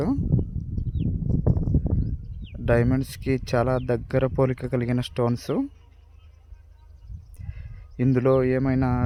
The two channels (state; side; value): identical; both; correlation 1.00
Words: డైమండ్స్కి చాలా దగ్గర పోలిక కలిగిన స్టోన్స్. ఇందులో ఏమైనా